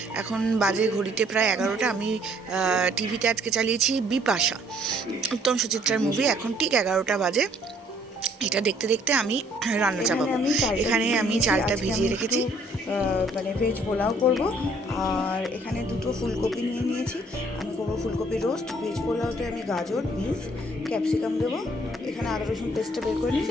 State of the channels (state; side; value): normal; both; correlation 0.62